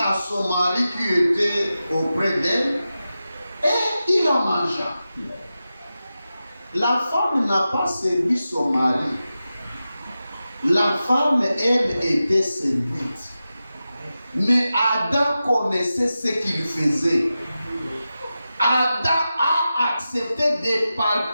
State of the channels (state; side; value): inverted; both; correlation -0.92